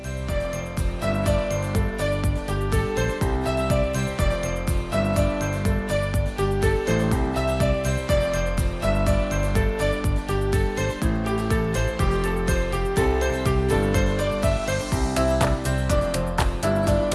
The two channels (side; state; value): both; identical; correlation 1.00